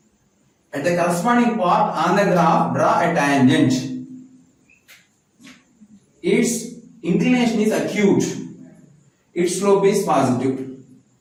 At the corresponding part on the graph, draw a tangent. Its inclination is acute. Its slope is positive.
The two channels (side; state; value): both; identical; correlation 1.00